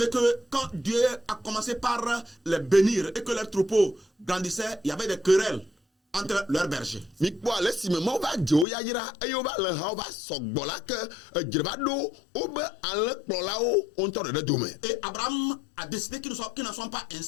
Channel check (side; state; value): right; drops out; at 8.7 s